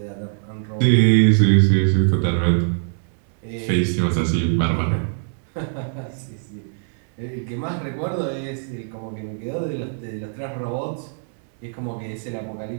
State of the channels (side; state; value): left; silent; digital silence